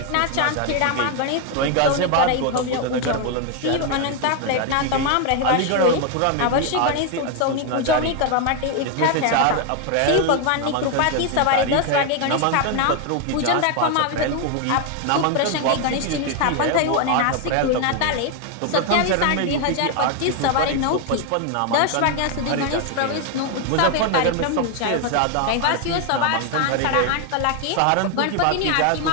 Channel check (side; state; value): both; different; correlation 0.01